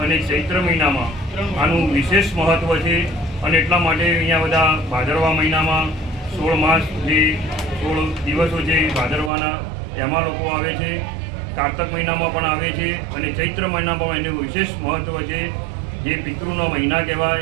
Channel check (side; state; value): left; drops out; at 9.3 s